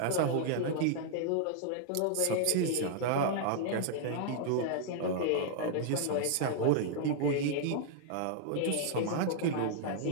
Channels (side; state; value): both; different; correlation -0.01